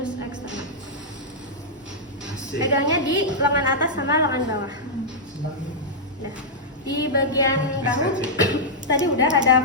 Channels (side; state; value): both; normal; correlation -0.08